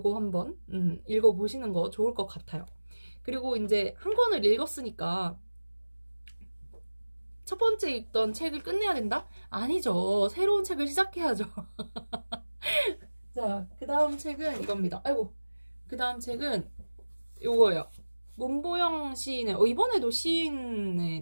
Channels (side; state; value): both; inverted; correlation -1.00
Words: 한번 읽어보시는 거 좋을 것 같아요. 그리고 이제 한 권을 읽었으니까 첫 번째 읽던 책을 끝내야 된다? 아니죠. 새로운 책을 시작해야죠. 자, 그 다음 책은 이겁니다. 아이고, 그 다음 책은 요거예요. 문보영 시인의 이번에도